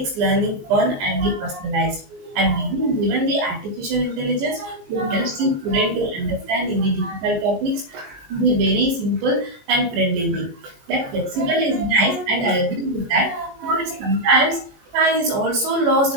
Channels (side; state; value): left; late; 14 ms